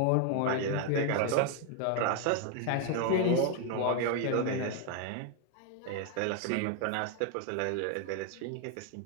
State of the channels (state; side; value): different; both; correlation 0.01